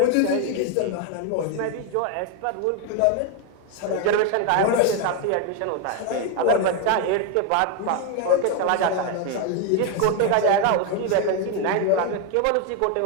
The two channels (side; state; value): both; different; correlation 0.01